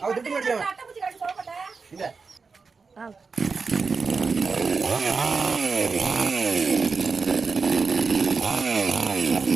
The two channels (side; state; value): left; quieter; 4.8 dB